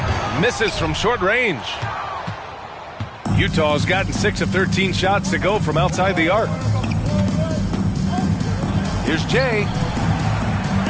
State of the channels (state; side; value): identical; both; correlation 1.00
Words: Misses from short range. Utah's gotten 6 of 13 shots to go from outside the arc. Here's Jay.